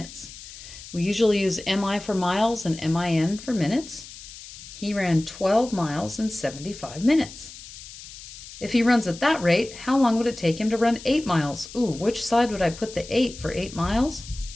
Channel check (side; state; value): left; noise; hiss, 15 dB below the sound